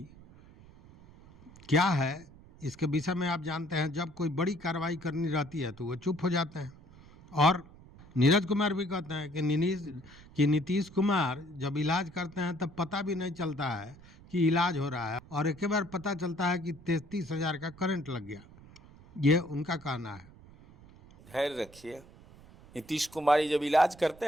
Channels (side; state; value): right; noise; rumble, 22 dB below the sound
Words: क्या है, इसके विषय में आप जानते हैं। जब कोई बड़ी कार्रवाई करनी रहती है तो वो चुप हो जाते हैं। और नीरज कुमार भी कहते हैं कि नीतीश कुमार जब इलाज करते हैं तब पता भी नहीं चलता है कि इलाज हो रहा है, और एक बार पता चलता है कि 33,000 का करंट लग गया। ये उनका कहना है। धैर्य रखिए। नीतीश कुमार जब इलाज करते